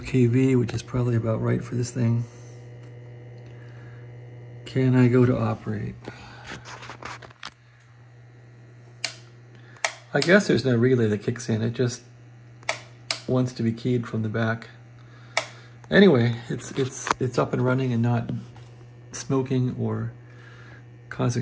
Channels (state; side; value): identical; both; correlation 1.00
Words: which is probably about right for this thing. Can I go to operate? I guess there's no relay that kicks in. It just wants to be keyed from the back. Anyway, it's up and running and not smoking or